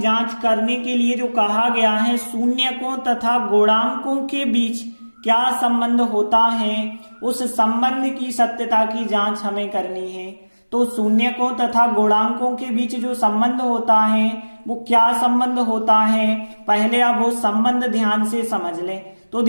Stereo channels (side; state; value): both; inverted; correlation -1.00